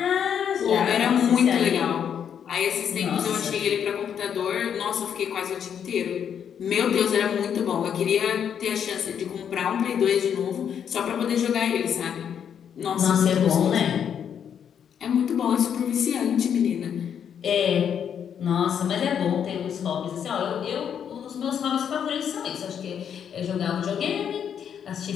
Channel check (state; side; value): quieter; right; 8.3 dB